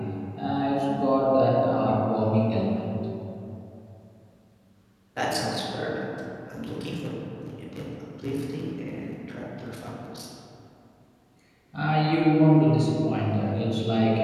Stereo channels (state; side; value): identical; both; correlation 1.00